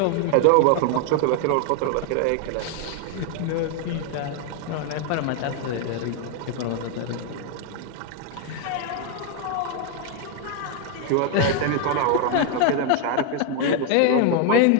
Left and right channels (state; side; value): different; both; correlation 0.01